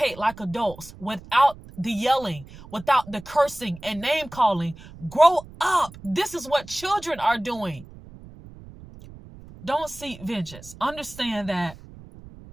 like adults without the yelling, without the cursing and name calling. Grow up. This is what children are doing. Don't seek vengeance. Understand that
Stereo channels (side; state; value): right; noise; rumble, 18 dB below the sound